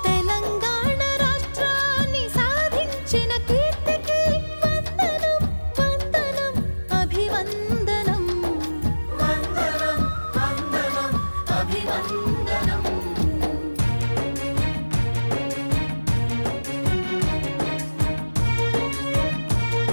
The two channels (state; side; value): inverted; both; correlation -1.00